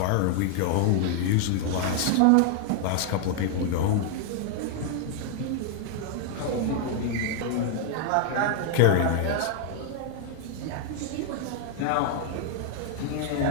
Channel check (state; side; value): different; both; correlation 0.00